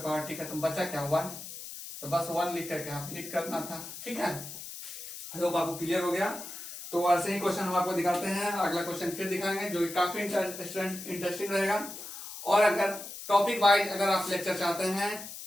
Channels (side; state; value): left; noise; hiss, 11 dB below the sound